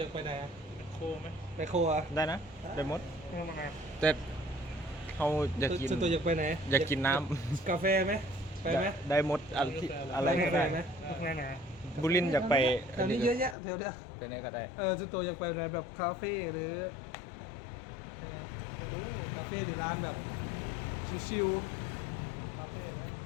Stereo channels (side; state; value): right; drops out; at 13.6 s